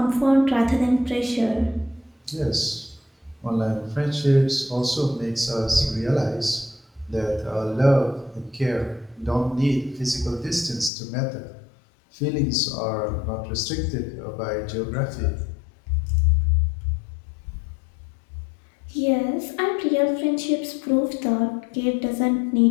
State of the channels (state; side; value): drops out; right; at 10.9 s